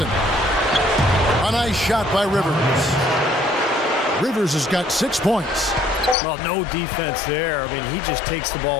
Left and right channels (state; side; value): drops out; right; at 6.2 s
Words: A nice shot by Rivers. Rivers has got 6 points. Well, no defense there. I mean, he just takes the